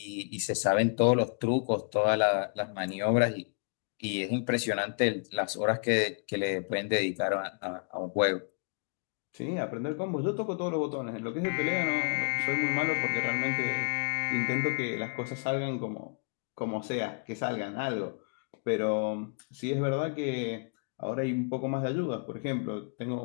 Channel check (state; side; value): quieter; right; 39.2 dB